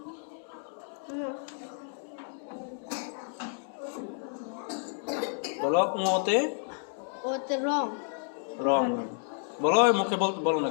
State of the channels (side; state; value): right; silent; 57 dB below the other